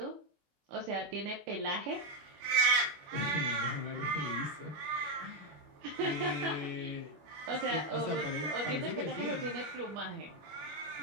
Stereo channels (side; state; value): left; late; 21 ms